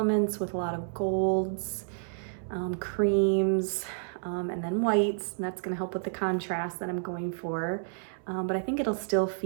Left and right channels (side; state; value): left; silent; 58 dB below the other